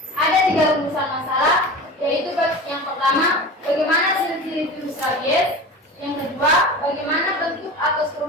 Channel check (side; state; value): both; normal; correlation 0.33